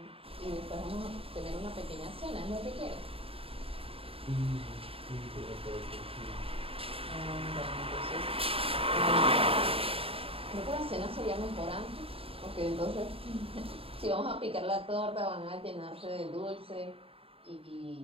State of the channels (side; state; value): left; late; 0.27 ms